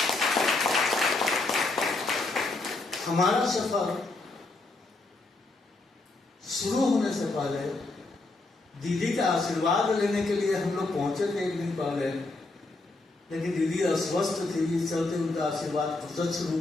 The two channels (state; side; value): quieter; right; 3.2 dB